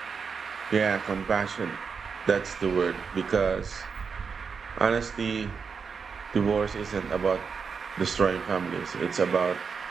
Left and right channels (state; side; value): quieter; left; 5.7 dB